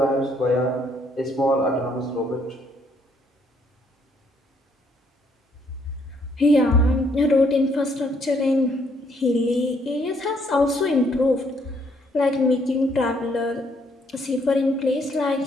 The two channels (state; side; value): normal; both; correlation 0.68